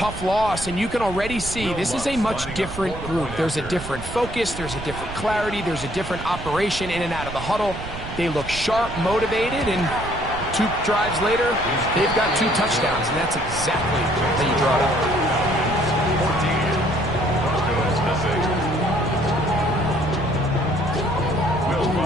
loss, and you can already see this is a much different group. There's a different focus, there's a different clarity, there's a different operation in and out of the huddle. They look sharp, motivated, and 2 drives later, they've got 2 touchdowns, and that's exactly how you draw it up. 14, Will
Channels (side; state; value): right; noise; rumble, 10 dB below the sound